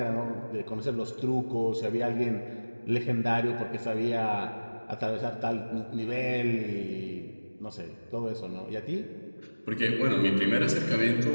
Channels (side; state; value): both; inverted; correlation -1.00